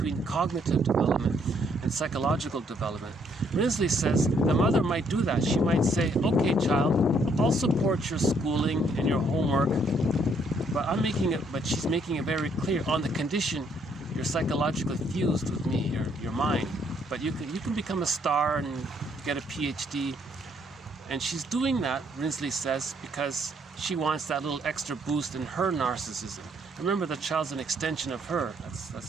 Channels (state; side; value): normal; both; correlation 0.69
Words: cognitive development and psychological development? Rinsley says the mother might do that. She might say, okay, child, I'll support your schooling and your homework, but she's making it very clear, on the condition you're psychologically fused with me, your mind. But you can become a star and get a PhD. And she's doing that, Rinsley says, because she wants that little extra boost in her narcissism. Remember, the child's an extension of her.